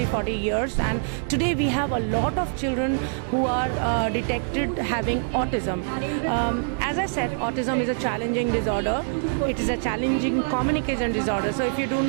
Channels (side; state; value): left; silent; digital silence